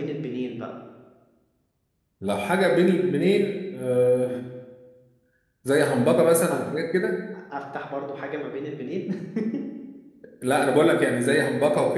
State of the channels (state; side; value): identical; both; correlation 1.00